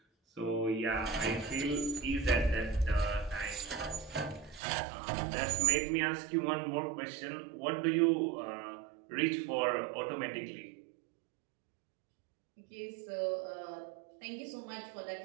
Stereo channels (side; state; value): left; drops out; at 4.6 s